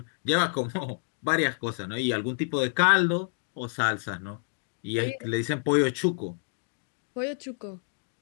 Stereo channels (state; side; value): silent; right; digital silence